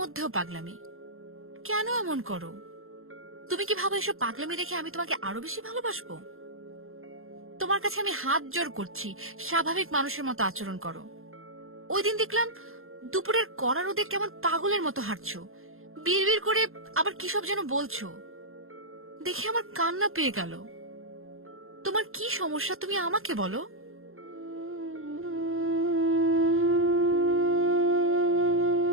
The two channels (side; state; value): left; late; 0.61 ms